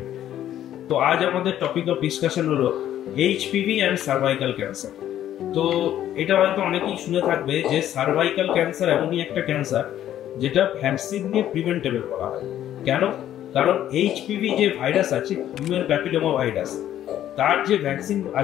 তো আজ আমাদের টপিক অফ ডিসকাশন হলো এইচপিভি অ্যান্ড সার্ভাইকাল ক্যান্সার। তো এটা হয়তো অনেকেই শুনে থাকবে যে সার্ভাইকাল ক্যান্সার এমনই একটা ক্যান্সার যেটা ভ্যাকসিন দিয়ে প্রিভেন্টেবল করা হয়। কেন? কারণ এইচপিভি যে ভাইরাস আছে, হিউম্যান প্যাপিলোমা ভাইরাস, তার যে ভ্যাকসিন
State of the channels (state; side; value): quieter; right; 11.7 dB